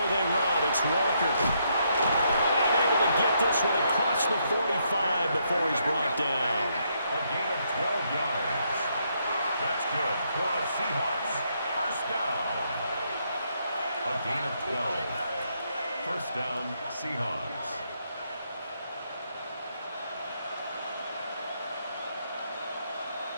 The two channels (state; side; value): inverted; both; correlation -0.75